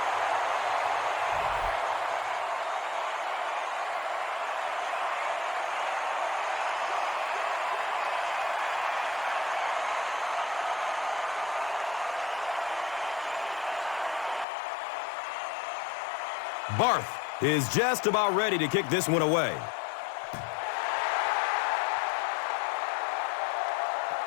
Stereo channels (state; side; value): drops out; right; at 14.5 s